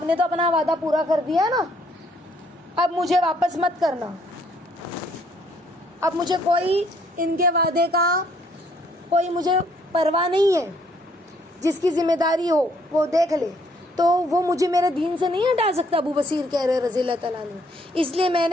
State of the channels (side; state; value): both; normal; correlation 0.66